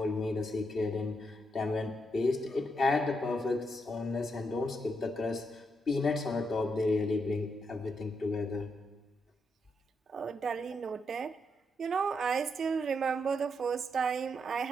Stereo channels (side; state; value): both; normal; correlation 0.81